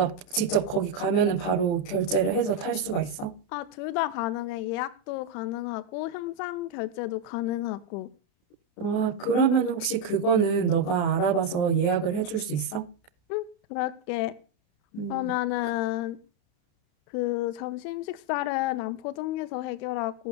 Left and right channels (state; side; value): late; right; 34 ms